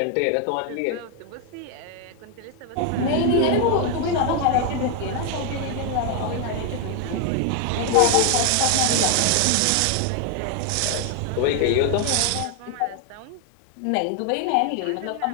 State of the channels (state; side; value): different; both; correlation 0.01